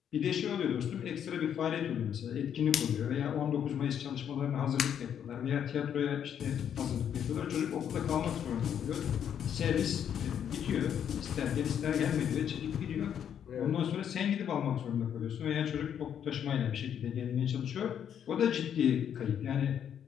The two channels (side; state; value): right; quieter; 8.9 dB